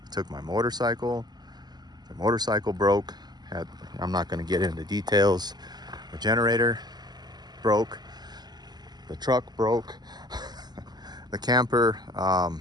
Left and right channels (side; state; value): left; late; 0.20 ms